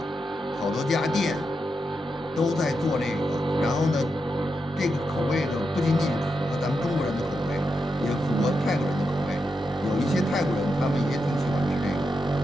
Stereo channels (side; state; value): both; normal; correlation 0.86